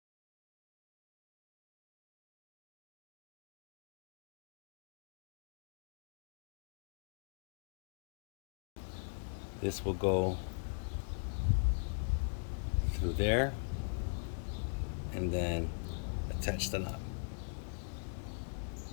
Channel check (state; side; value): silent; right; digital silence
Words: This will go through there and then attach the knob.